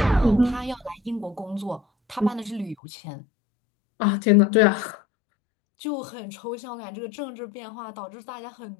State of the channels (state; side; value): drops out; right; at 2.8 s